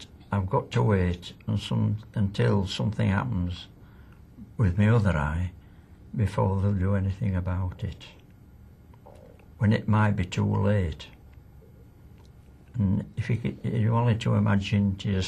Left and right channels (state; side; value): identical; both; correlation 1.00